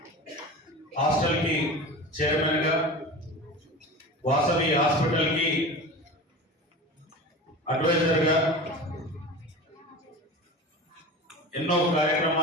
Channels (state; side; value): normal; both; correlation 0.33